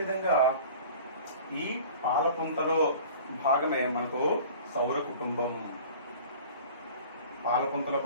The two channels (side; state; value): both; inverted; correlation -0.43